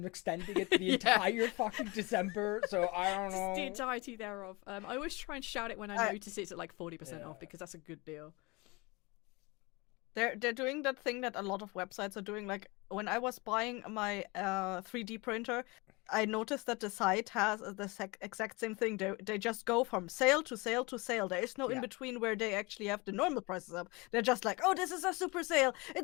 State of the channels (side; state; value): right; quieter; 25.6 dB